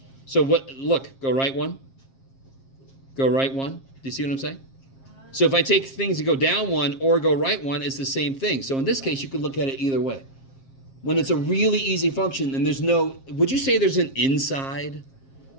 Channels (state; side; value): late; right; 7.5 ms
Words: So what, look, go right one. Go right one. Do you see what I'm saying? So if I take things that go down one or go right one, it's the same thing. So in this case, you could look at it either way. When it's a really easy function and there's no, would you say there's an inside?